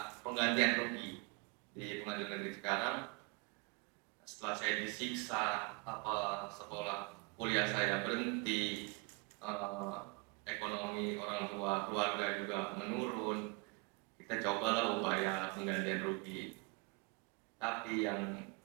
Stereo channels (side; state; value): left; quieter; 30.4 dB